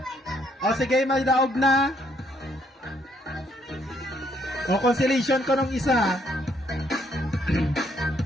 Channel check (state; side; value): normal; both; correlation 0.70